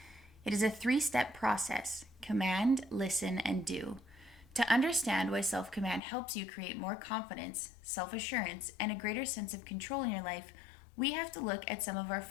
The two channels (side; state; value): right; drops out; at 6.0 s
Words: It is a 3-step process: command, listen, and do. To understand why self-command helps you create more confidence, self-assurance, and a greater sense of control in your life, we have to look at some of our